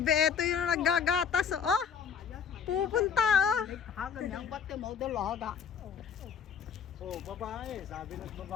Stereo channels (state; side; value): quieter; right; 6.9 dB